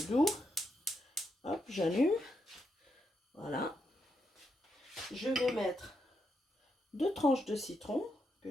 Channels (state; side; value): normal; both; correlation 0.82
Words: doux. Hop, j'allume. Voilà. Je vais mettre 2 tranches de citron que